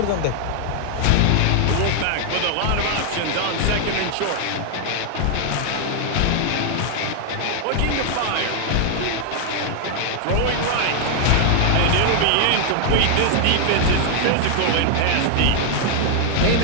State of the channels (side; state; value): both; different; correlation 0.00